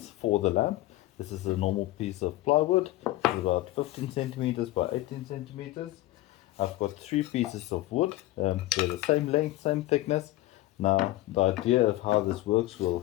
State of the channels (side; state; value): right; quieter; 16.8 dB